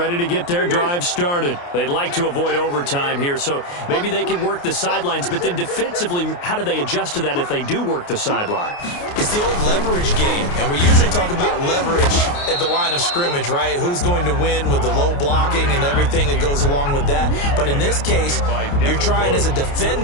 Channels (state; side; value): late; right; 29 ms